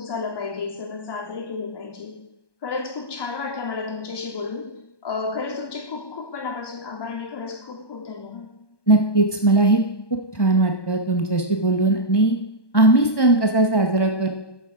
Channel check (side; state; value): right; late; 1.2 ms